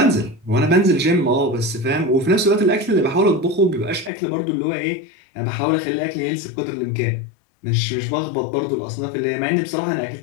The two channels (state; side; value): drops out; right; at 4.1 s